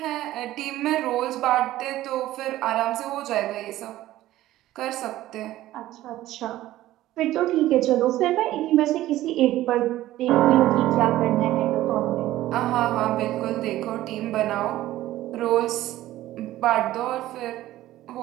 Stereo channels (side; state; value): left; quieter; 15.0 dB